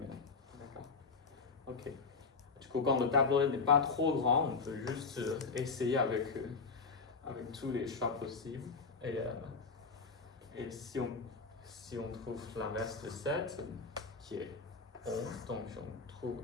D'accord? Ok. Du coup, quand le tableau n'est pas trop grand, on peut juste essayer avec tous les choix possibles. Et si on trouve l'inverse de 7, qui est 11, donc on trouve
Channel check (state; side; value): quieter; right; 4.7 dB